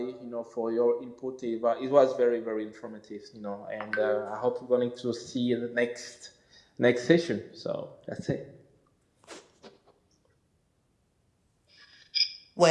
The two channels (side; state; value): both; identical; correlation 1.00